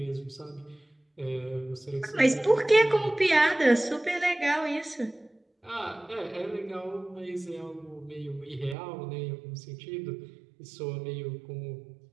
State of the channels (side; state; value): left; drops out; at 8.8 s